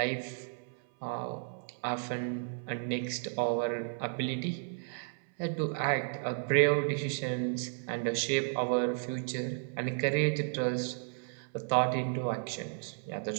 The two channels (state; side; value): silent; left; 56 dB below the other